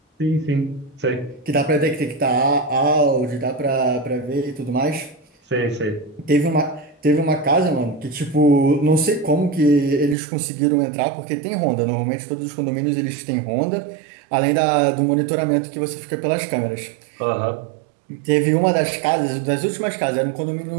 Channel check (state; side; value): drops out; left; at 10.2 s